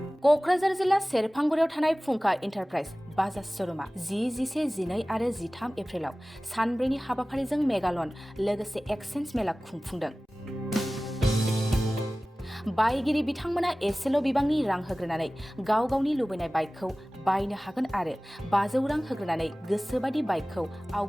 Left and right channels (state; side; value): normal; both; correlation 0.98